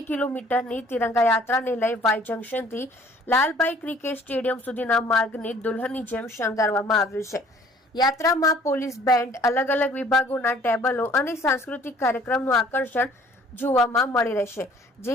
કિલોમીટરની તિરંગા યાત્રાને લઈ વાય જંકશનથી લાલભાઈ ક્રિકેટ સ્ટેડિયમ સુધીના માર્ગને દુલ્હનની જેમ શણગારવામાં આવ્યું છે. યાત્રામાં પોલીસ બેન્ડ, અલગ અલગ વિભાગોના ટેબલો અને સાંસ્કૃતિક કાર્યક્રમનું આકર્ષણ જોવામાં મળી રહેશે.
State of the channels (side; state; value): both; normal; correlation 0.56